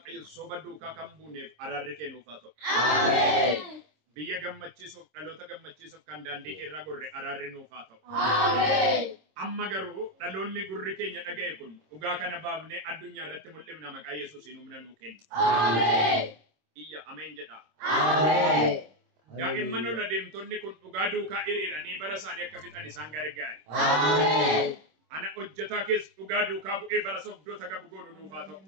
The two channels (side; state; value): left; late; 26 ms